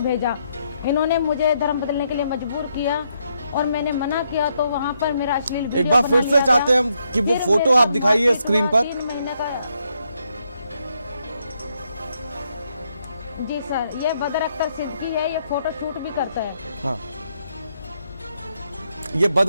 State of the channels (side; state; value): both; inverted; correlation -0.77